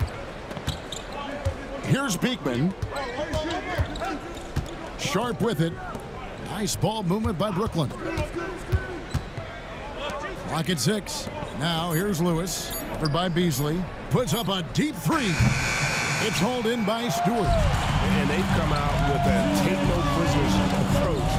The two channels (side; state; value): both; identical; correlation 1.00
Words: Here's Beekman. Sharp with it. Nice ball movement by Brooklyn. Clock at 6. Now here's Lewis. Covered by Beasley. Puts up a deep 3. It's hauled in by Stewart. And they've come out with a take-no-prisoners approach